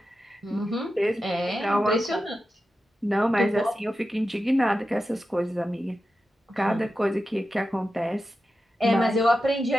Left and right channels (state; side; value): normal; both; correlation 0.91